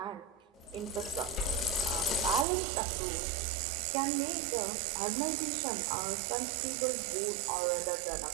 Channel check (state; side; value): drops out; left; at 2.5 s